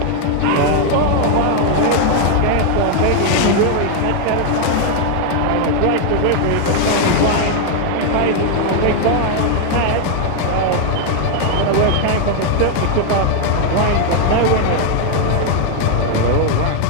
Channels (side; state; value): both; different; correlation 0.00